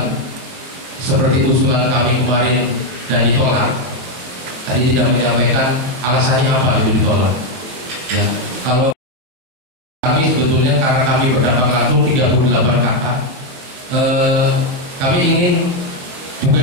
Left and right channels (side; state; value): left; late; 23 ms